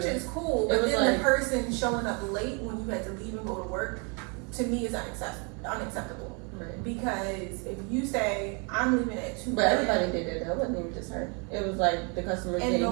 better. is cool, but then the person showing up late when you had to leave and go to work, to me, is unacceptable. Right. Because if you say, I'm leaving at 2 But everybody did it though. It wasn't even just her. It was like the customers and didn't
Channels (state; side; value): quieter; left; 34.1 dB